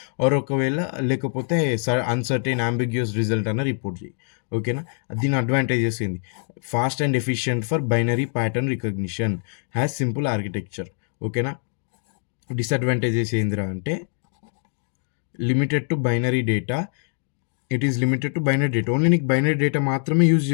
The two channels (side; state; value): right; silent; 59 dB below the other